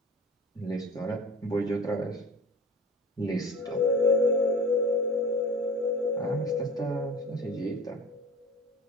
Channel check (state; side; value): normal; both; correlation 0.37